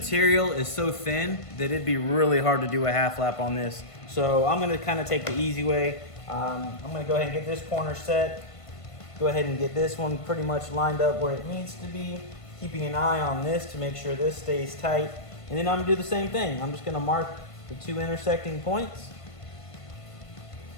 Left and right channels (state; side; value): late; right; 1.5 ms